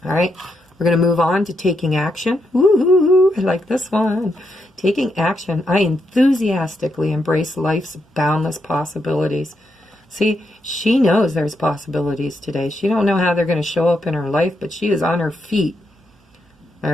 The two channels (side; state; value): both; normal; correlation 0.81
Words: All right, we're going to move on to taking action. Woo-hoo-hoo, I like this one. Taking action. I enthusiastically embrace life's boundless possibilities. See, she knows there's possibilities today. She don't know how they're going to show up in her life, but she is on her feet. All